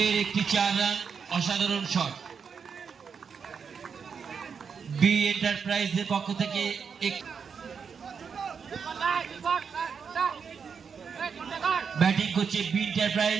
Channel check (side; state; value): left; quieter; 6.3 dB